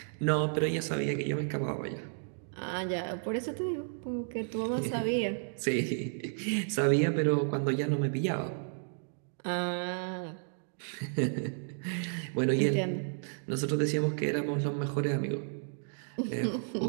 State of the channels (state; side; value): silent; left; digital silence